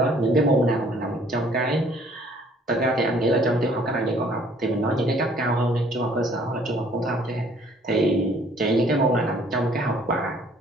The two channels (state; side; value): normal; both; correlation 0.58